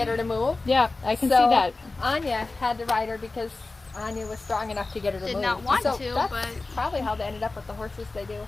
her to move. Yeah, I can So, see that. Anya had to ride her because Anya was strong enough to get her to Did move. not want so to, that's but probably how they ended up with the horses they do.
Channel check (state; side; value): quieter; right; 3.4 dB